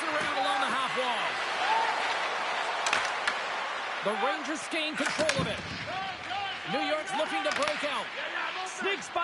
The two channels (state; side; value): identical; both; correlation 1.00